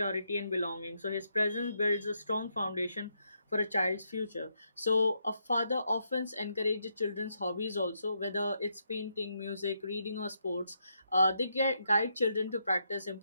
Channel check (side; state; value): both; inverted; correlation -0.79